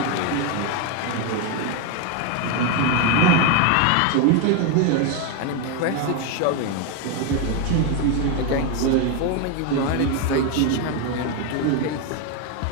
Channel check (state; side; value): different; both; correlation 0.02